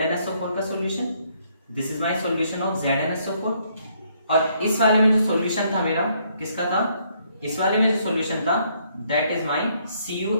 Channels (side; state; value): both; inverted; correlation -0.70